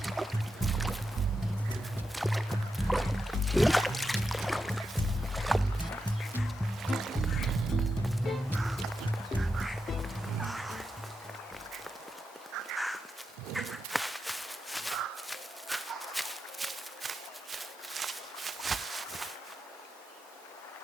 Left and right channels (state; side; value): normal; both; correlation 0.87